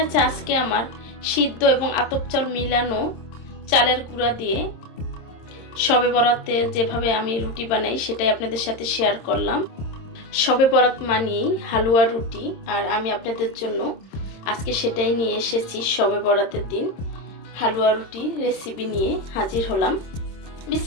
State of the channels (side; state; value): right; late; 26 ms